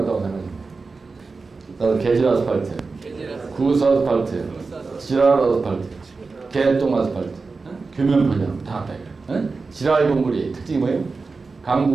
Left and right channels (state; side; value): quieter; left; 4.2 dB